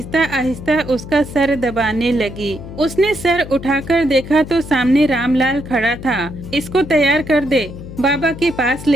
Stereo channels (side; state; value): left; noise; hum, 12 dB below the sound